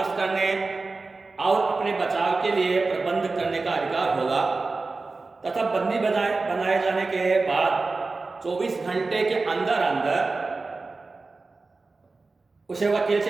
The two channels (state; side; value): quieter; left; 3.8 dB